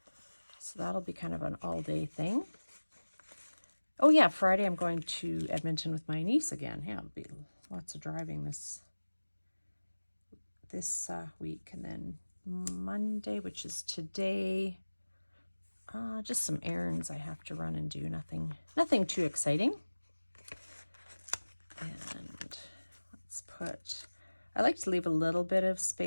So that'll be kind of an all-day thing. Oh yeah, Friday I'm going to Edmonton with my niece again. Yeah, it'll be lots of driving this week. And then Monday, which is today, just some errands I have to run and do. Nothing too exciting. And I like to leave a little bit of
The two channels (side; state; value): both; inverted; correlation -1.00